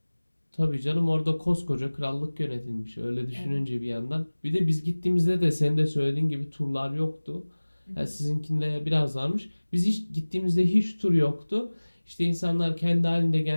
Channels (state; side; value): inverted; both; correlation -1.00